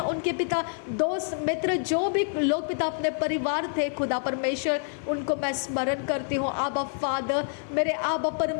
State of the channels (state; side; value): silent; right; 56 dB below the other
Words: उनके पिता दोस्त मित्र जो भी लोग पिता अपने परिवार थे खुदा परमेश्वर, उनको मैं स्मरण करती हूँ। आबा फादर मेरे आबा